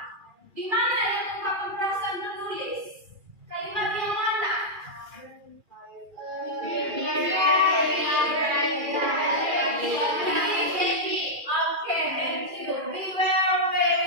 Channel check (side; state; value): left; late; 2.4 ms